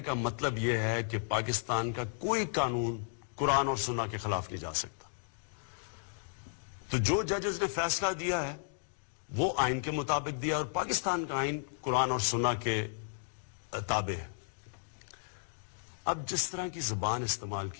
کا مطلب یہ ہے کہ پاکستان کا کوئی قانون قرآن اور سنہ کے خلاف نہیں جا سکتا۔ تو جو ججز نے فیصلہ دیا ہے وہ آئین کے مطابق دیا، اور پاکستان کا آئین قرآن اور سنہ کے تابع ہے۔ اب جس طرح کی زبان استعمال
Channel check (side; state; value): right; silent; digital silence